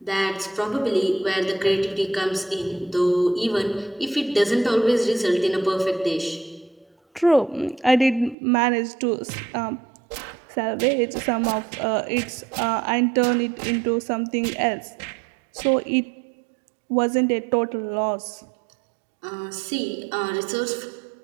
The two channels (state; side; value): drops out; left; at 8.3 s